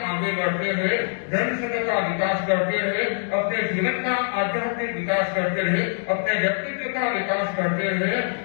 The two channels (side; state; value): right; silent; 63 dB below the other